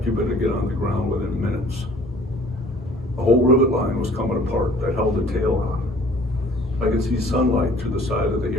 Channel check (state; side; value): normal; both; correlation 0.53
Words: you better get on the ground within minutes. The whole rivet line was coming apart that held the tail on. I could see sunlight through the side of the